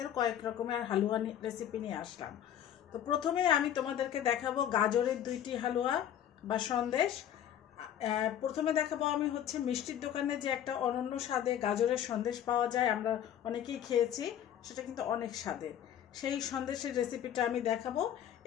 কয়েক রকমের হালুয়া রেসিপি নিয়ে আসলাম। তো প্রথমে আমি তোমাদেরকে দেখাবো গাজরের দুইটি হালুয়া বা সন্দেশ। প্রথমে দেখাবো আমি হচ্ছে মিষ্টির দোকানে যে একটা অনন্য স্বাদে গাজরের সন্দেশ পাওয়া যায়, আমরা অনেকেই খেয়েছি, সেটা কিন্তু অনেক স্বাদের। সেই সন্দেশের রেসিপিটা আমি দেখাবো।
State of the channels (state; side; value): quieter; right; 10.4 dB